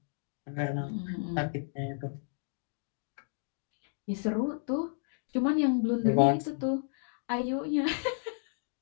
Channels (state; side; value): silent; right; digital silence